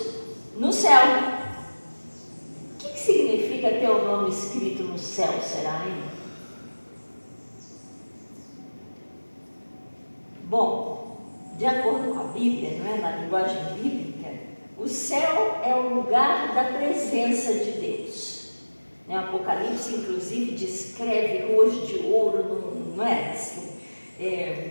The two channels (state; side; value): inverted; both; correlation -1.00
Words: no céu. O que significa ter o nome escrito no céu, será, hein? Bom, de acordo com a Bíblia, não é? Na linguagem bíblica, o céu é o lugar da presença de Deus. O Apocalipse, inclusive, descreve ruas de ouro, não é?